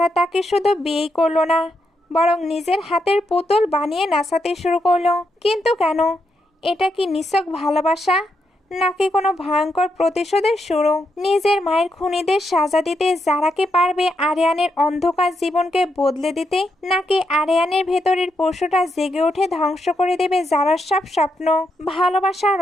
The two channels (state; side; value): normal; both; correlation 0.81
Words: তাকে শুধু বিয়েই করলো না, বরং নিজের হাতের পুতুল বানিয়ে নাচাতে শুরু করলো। কিন্তু কেন? এটা কি নিছক ভালোবাসা, নাকি কোনো ভয়ঙ্কর প্রতিশোধের শুরু? নিজের মায়ের খুনিদের সাজা দিতে যারাকে পারবে আরিয়ানের অন্ধকার জীবনকে বদলে দিতে, নাকি আরিয়ানের ভেতরের পশুটা জেগে উঠে ধ্বংস করে দেবে যারার সব স্বপ্ন? ভালোবাসা,